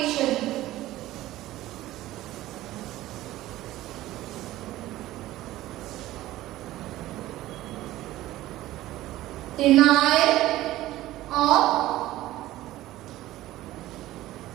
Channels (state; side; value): quieter; left; 15.8 dB